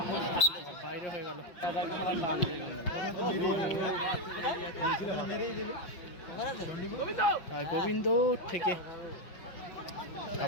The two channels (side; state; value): right; late; 5.6 ms